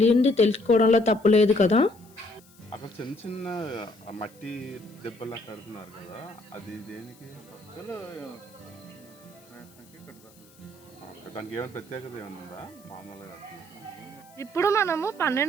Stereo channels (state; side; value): noise; left; hiss, 27 dB below the sound